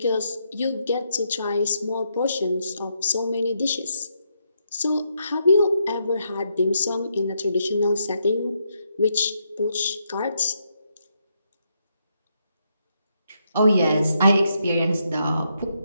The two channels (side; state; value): both; inverted; correlation -0.79